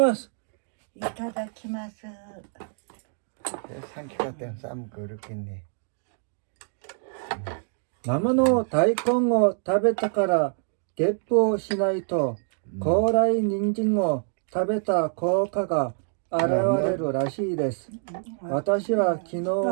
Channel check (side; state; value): left; silent; 61 dB below the other